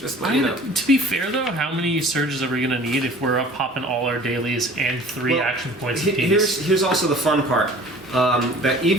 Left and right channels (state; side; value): normal; both; correlation 0.46